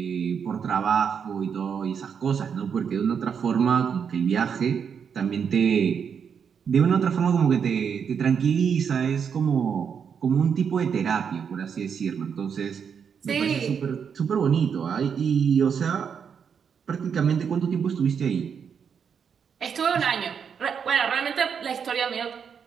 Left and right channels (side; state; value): left; quieter; 7.0 dB